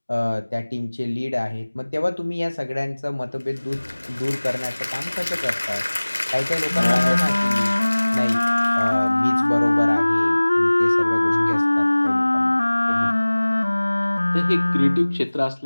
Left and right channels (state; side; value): inverted; both; correlation -1.00